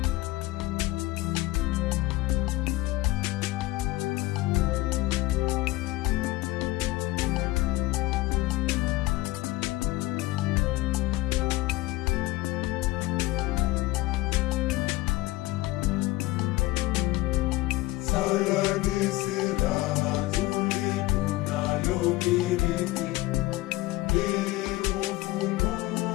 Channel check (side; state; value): right; quieter; 18.6 dB